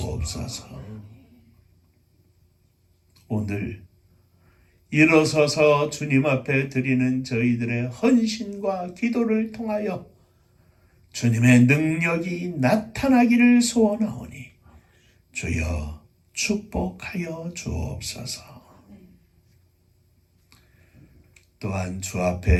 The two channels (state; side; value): identical; both; correlation 1.00